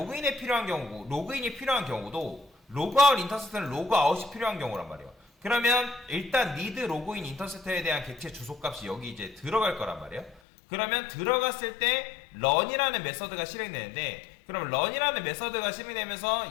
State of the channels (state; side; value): drops out; right; at 10.4 s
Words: 필요한 경우고, 로그인이 필요한 경우도 로그아웃 인터셉터는 로그아웃이 필요한 경우란 말이에요. 그러면 일단 need 로그인 인터셉터에 대한 객체 주소값이 여기 이제 들어갈 거란 말이에요. 그러면 들어갔을 때 run이라는 메서드가 실행되는데, 그럼 run이라는 메서드가